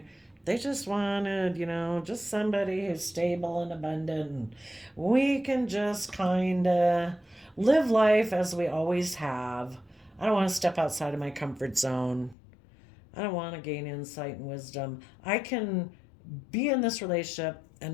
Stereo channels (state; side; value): drops out; right; at 12.4 s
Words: They just wanted, just somebody who's stable and abundant. And we can just kind of live life as we always have. I don't want to step outside of my comfort zone. I don't want to gain insight and wisdom. I can be in this relationship